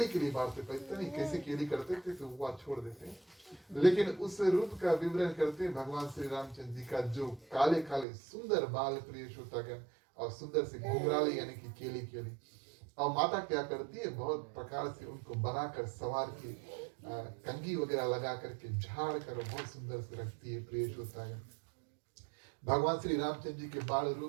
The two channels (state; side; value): drops out; left; at 8.1 s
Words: केली बांटते, पता नहीं कैसे केली करते थे, तो वो छोड़ देते हैं। लेकिन उस रूप का विवरण करते हैं भगवान श्री रामचंद्र जी का, जो काले काले सुंदर बाल प्रिय श्रोतागण, और सुंदर से घुंघराले यानी कि केली केली, और माता क्या करती है, बहुत प्रकार से उनको बनाकर सवार के कंघी वगैरह लगा करके झाड़ कर बहुत सुंदर से रखती है प्रिय श्रोतागण। भगवान श्री रामचंद्र जी के बाल